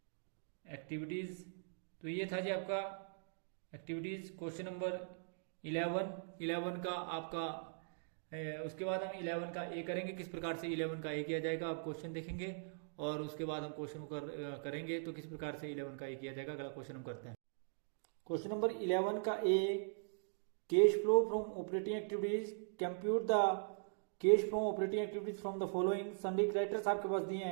activities. तो ये था जी आपका एक्टिविटीज क्वेश्चन नंबर 11 का आपका। उसके बाद हम 11 का ए करेंगे, किस प्रकार से 11 का ए किया जाएगा आप क्वेश्चन देखेंगे, और उसके बाद हम क्वेश्चन को करेंगे तो किस प्रकार से 11 का ए किया जाएगा। अगला क्वेश्चन हम करते हैं क्वेश्चन नंबर 11 का A, cash flow from operating activities, compute the cash from operating activities from the following. Sundry criteria आपके पास दिए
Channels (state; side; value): silent; left; digital silence